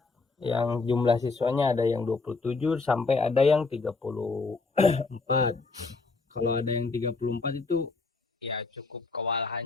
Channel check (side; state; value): right; quieter; 4.0 dB